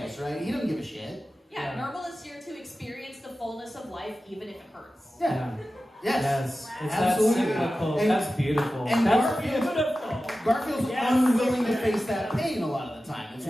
right? He doesn't give a shit. Yeah, Nermal is here to experience the fullness of life, even if it hurts. Yeah. Yes. It's Absolutely. that cyclical. And- That's beautiful. and That's Garfield- beautiful. Garfield's Yes. unwilling to face that pain a lot of the time. It's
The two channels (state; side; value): normal; both; correlation 0.94